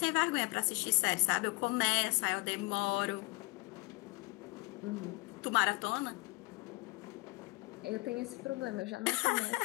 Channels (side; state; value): right; quieter; 25.8 dB